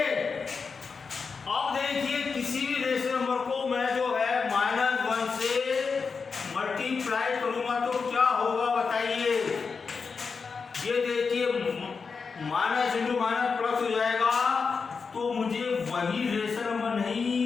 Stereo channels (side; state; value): right; quieter; 5.2 dB